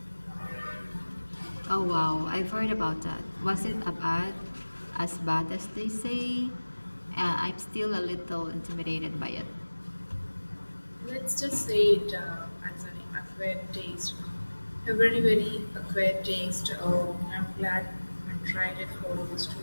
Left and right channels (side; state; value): both; inverted; correlation -1.00